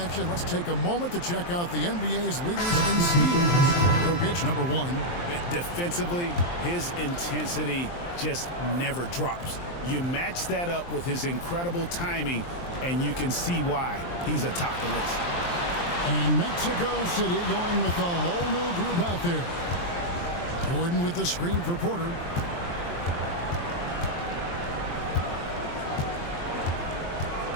let's take a moment to check out the NBA's leaders in steals. Jokic, number 1. Defensively, his intensity just never drops. You match that up with his incredible timing, and you can see why he's atop the list. And Mexico City going with a whole new group out there. Gordon with the screen for Porter.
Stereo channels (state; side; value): late; right; 23 ms